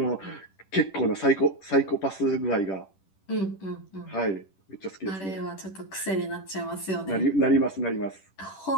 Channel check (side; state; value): right; late; 10 ms